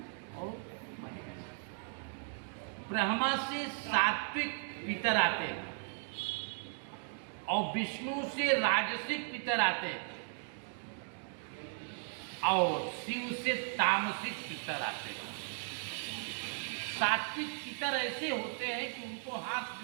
और महेश। ब्रह्मा से सात्विक पितर आते हैं और विष्णु से राजसिक पितर आते हैं और शिव से तामसिक पितर आते हैं। सात्विक पितर ऐसे होते हैं कि उनको हाथ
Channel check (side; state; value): left; silent; 53 dB below the other